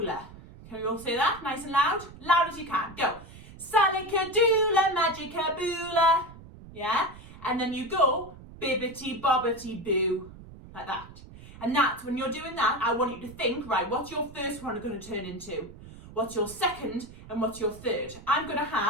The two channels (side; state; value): right; noise; rumble, 18 dB below the sound